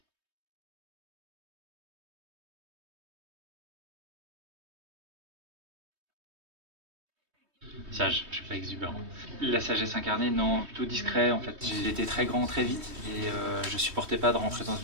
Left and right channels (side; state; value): left; late; 3.2 ms